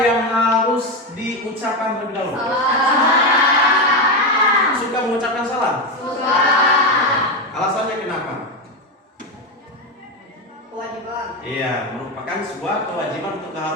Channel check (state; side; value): normal; both; correlation 0.12